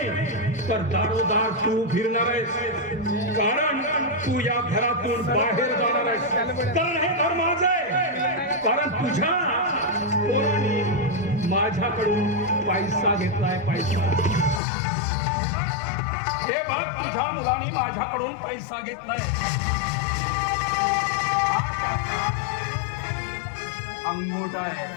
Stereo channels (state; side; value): drops out; right; at 14.6 s